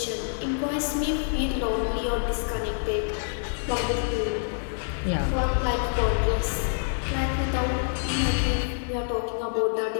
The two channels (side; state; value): right; silent; digital silence